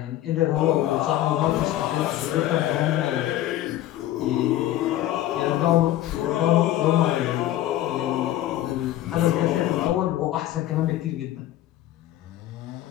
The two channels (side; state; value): right; quieter; 13.7 dB